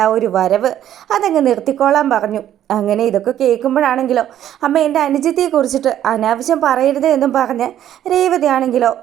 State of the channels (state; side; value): quieter; left; 11.3 dB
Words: ആ ഒരു വരവ് അതങ്ങ് നിർത്തിക്കോളാൻ പറഞ്ഞു. അങ്ങനെ ഇതൊക്കെ കേൾക്കുമ്പോഴാണെങ്കിലോ അമ്മ എൻ്റെ അനുജത്തിയെ കുറിച്ചിട്ട് അനാവശ്യം പറയരുത് എന്നും പറഞ്ഞ് രേവതി ആണെങ്കിലോ